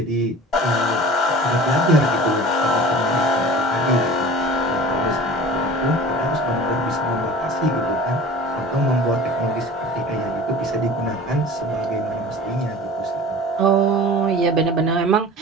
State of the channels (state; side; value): normal; both; correlation 0.40